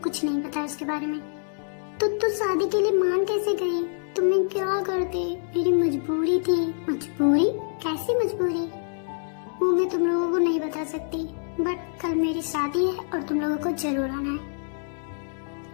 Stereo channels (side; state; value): right; silent; 61 dB below the other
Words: नहीं पता उसके बारे में। तो तू शादी के लिए मान कैसे गई? तुम्हें क्या करते? मेरी मजबूरी थी। मजबूरी? कैसी मजबूरी? वो मैं तुम लोगों को नहीं बता सकती, बट कल मेरी शादी है और तुम लोगों को जरूर आना है।